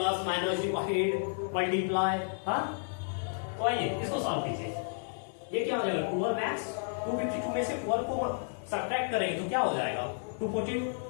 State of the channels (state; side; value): silent; right; 57 dB below the other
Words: माइनस डिवाइड मल्टीप्लाई। हाँ तो आइए इसको सॉल्व कीजिए। ये क्या हो जाएगा 12x 252 में से 12 को सब्ट्रैक्ट करेंगे तो क्या हो जाएगा 240